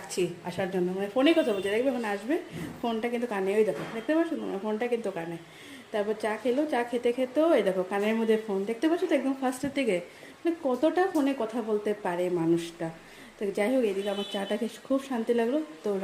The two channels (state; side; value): identical; both; correlation 1.00